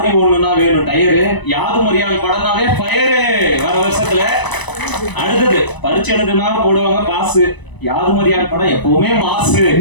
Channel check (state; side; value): late; right; 1.0 ms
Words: ஒண்ணுனா வேணும் டயரு, யாதும் அறியான் படம்னாவே ஃபயரு வர வருஷத்துல. அடுத்தது பரிச்சு எழுதுனா போடுவாங்க பாசு, யாதும் அறியான் படம் எப்பவுமே மாசு